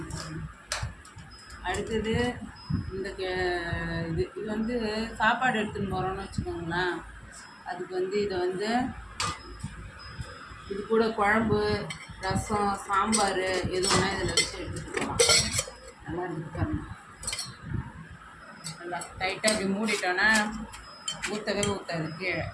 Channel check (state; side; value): identical; both; correlation 1.00